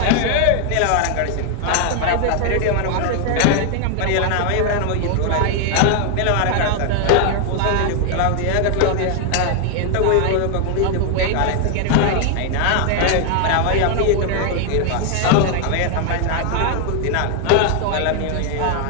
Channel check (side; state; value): both; different; correlation 0.00